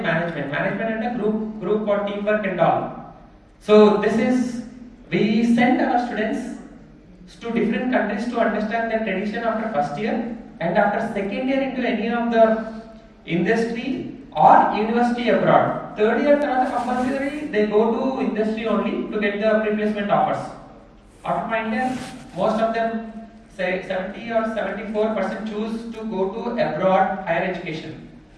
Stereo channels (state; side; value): identical; both; correlation 1.00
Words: management. Management and a group for teamwork and all. So this is, we send our students to different countries to understand their tradition after first year, and after second year into any of the industry or university abroad. Third year compulsory they go to industry only to get the replacement offers. After final year, most of them say 70 or 74% choose to go to abroad higher education.